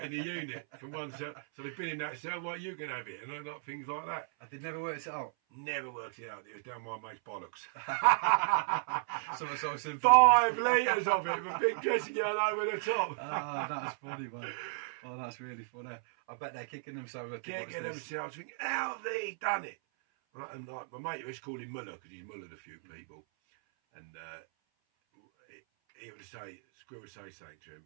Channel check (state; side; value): silent; left; 54 dB below the other